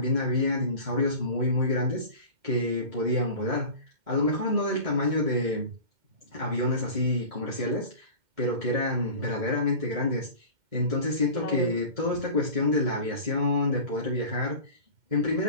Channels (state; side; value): late; left; 2.1 ms